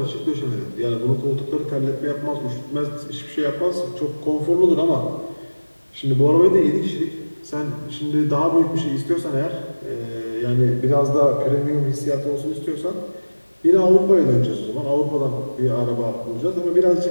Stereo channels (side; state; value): both; inverted; correlation -1.00